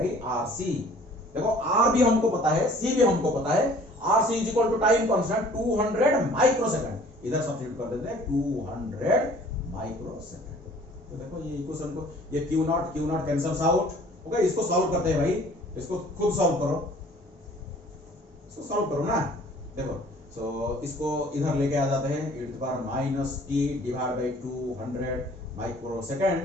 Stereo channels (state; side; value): normal; both; correlation 0.52